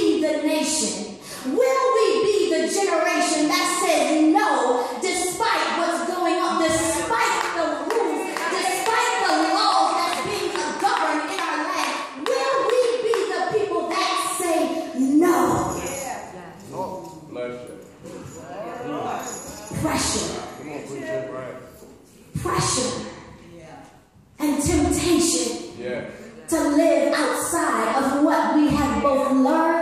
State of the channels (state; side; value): identical; both; correlation 1.00